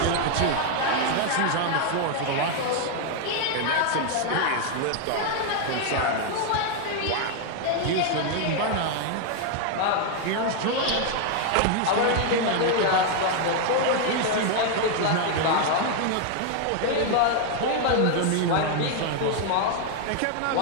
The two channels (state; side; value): different; both; correlation 0.00